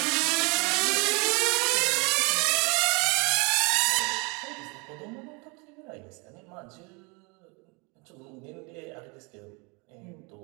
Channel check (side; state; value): left; quieter; 30.5 dB